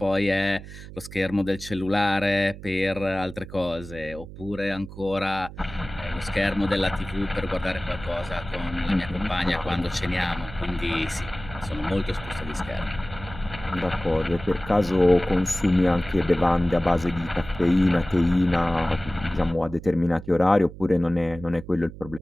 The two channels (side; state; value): right; noise; hum, 14 dB below the sound